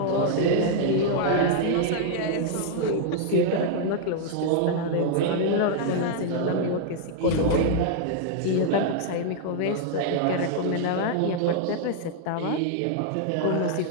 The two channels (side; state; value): both; different; correlation -0.01